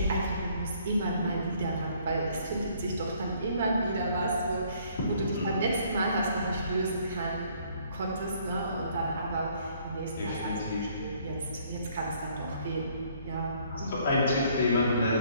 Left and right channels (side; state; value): both; inverted; correlation -0.63